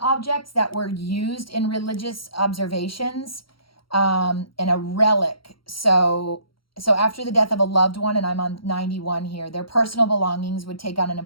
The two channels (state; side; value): late; right; 0.74 ms